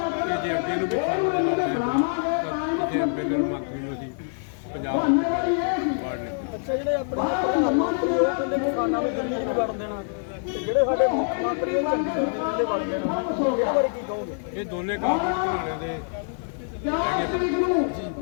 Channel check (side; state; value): right; silent; 60 dB below the other